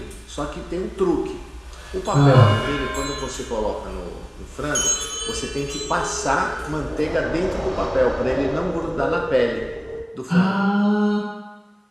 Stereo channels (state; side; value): identical; both; correlation 1.00